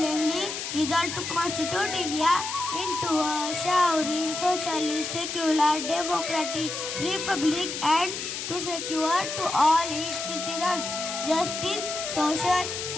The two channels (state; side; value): noise; left; hiss, 5 dB below the sound